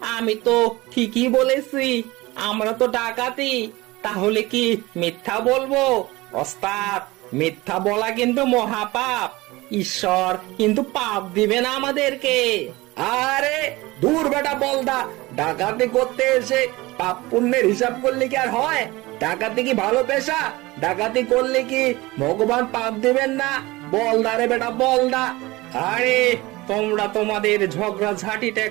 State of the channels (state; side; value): quieter; left; 20.7 dB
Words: আমি তো ঠিকই বলেছি, আমরা তো ডাকাতি, তাহলে কি মিথ্যা বলবো? ওস্তাদ, মিথ্যা বলা কিন্তু মহাপাপ, ঈশ্বর কিন্তু পাপ দিবে না আমাদেরকে। আরে দূর বেটা বলদা, ডাকাতি করতে এসে পাপ পুণ্যের হিসাব করলে কি আর হয়? ডাকাতি কি ভালো পেশা? ডাকাতি করলে কি ভগবান পাপ দিবেন না? বলদা রে বেটা বলদা। আরে তোমরা তোমাদের ঝগড়া ঝাঁটিটা